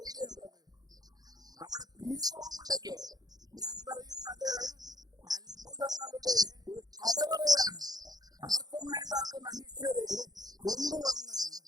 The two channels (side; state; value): left; late; 0.19 ms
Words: ഉള്ളത്? നമ്മുടെ പീസ് ഹോം ഉണ്ടല്ലോ, ഞാൻ പറയും അത് അത്ഭുതങ്ങളുടെ ഒരു കലവറയാണ്. ആർക്കും വേണ്ടാത്ത മനുഷ്യരെ കൊണ്ടുവന്ന്